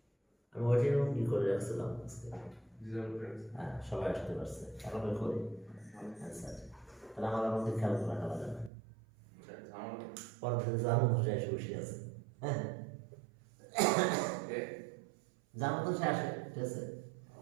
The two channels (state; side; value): drops out; left; at 8.7 s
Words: আমি ওইটাই কি করে রাখছিলাম আজকে, হ্যাঁ সবাই আসতে পারছে, আরামে করি আচ্ছা, তাহলে আমার মধ্যে খেয়াল করে রাখা লাগে না, পরের দিন যার মতো সে এসে বসে আছে, হ্যাঁ যার মতো সে আসে, ঠিক আছে